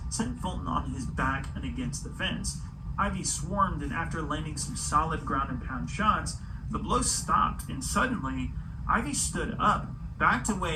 sent Fulton on his back and against the fence. Ivey swarmed, and after landing some solid ground and pound shots, the blows stopped, and suddenly, Ivey stood up, backed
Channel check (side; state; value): both; identical; correlation 1.00